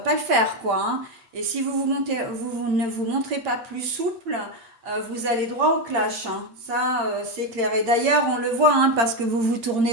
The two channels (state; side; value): late; left; 8.7 ms